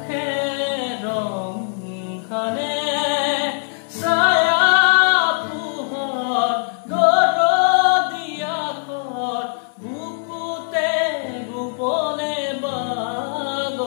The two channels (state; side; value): silent; right; digital silence